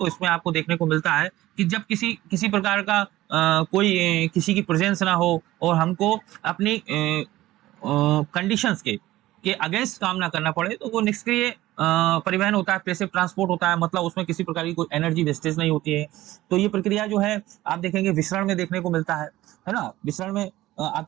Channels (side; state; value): left; quieter; 16.3 dB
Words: इसमें आपको देखने को मिलता है कि जब किसी प्रकार का कोई किसी की प्रेजेंस ना हो और हमको अपनी कंडीशंस के अगेंस्ट काम ना करना पड़े, तो वो निष्क्रिय परिवहन होता है, पैसिव ट्रांसपोर्ट होता है। मतलब उसमें किसी प्रकार की कोई एनर्जी वेस्टेज नहीं होती है। तो ये प्रक्रिया जो है आप देखेंगे विसरण में देखने को मिलता है ना। विसरण में आप